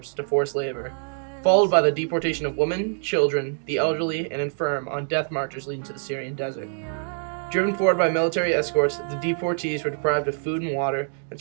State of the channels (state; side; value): silent; left; digital silence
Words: to forced labor, followed by the deportation of women, children, the elderly, and infirm on death marches leading to the Syrian desert. Driven forward by military escorts, the deportees were deprived of food and water and